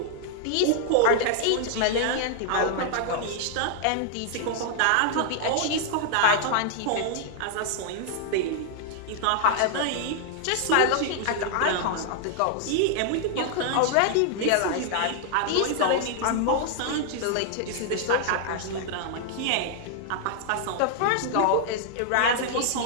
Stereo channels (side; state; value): both; different; correlation 0.00